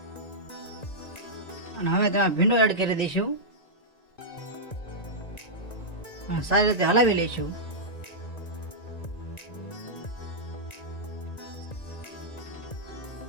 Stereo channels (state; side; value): late; right; 1.9 ms